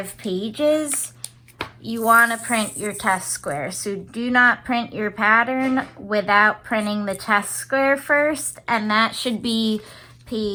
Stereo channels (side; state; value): both; identical; correlation 1.00